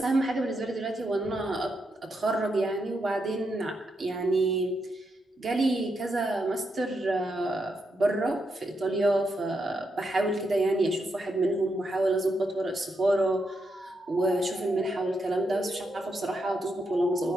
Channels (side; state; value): both; normal; correlation 0.82